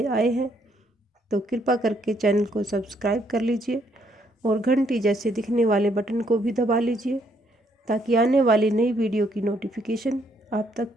आए हैं तो कृपा करके चैनल को सब्सक्राइब कर लीजिए और घंटी जैसे दिखने वाले बटन को भी दबा लीजिए ताकि आने वाली नई वीडियो की नोटिफिकेशन आप तक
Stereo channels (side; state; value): both; normal; correlation 0.71